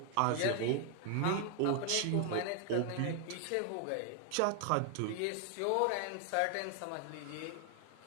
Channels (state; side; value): different; both; correlation 0.00